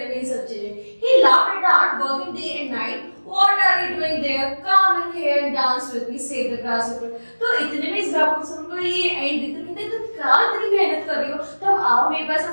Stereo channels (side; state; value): both; inverted; correlation -1.00